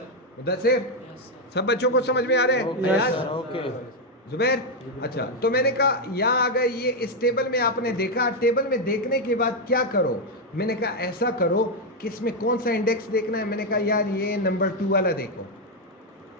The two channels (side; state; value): both; normal; correlation 0.03